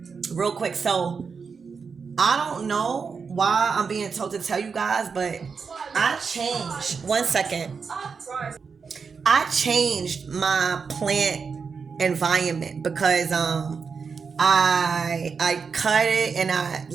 real quick. So I don't know why I'm being told to tell you guys, but I changed. 1 second. I changed my plant environment because I cut it, and I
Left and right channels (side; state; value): left; quieter; 5.5 dB